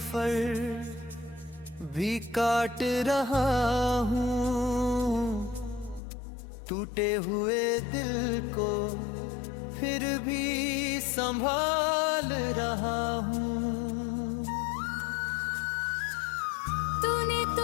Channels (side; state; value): right; drops out; at 6.0 s